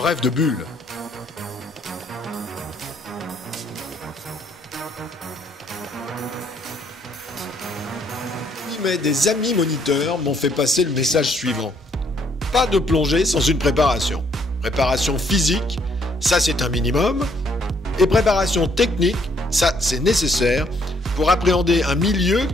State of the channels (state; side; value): normal; both; correlation 0.67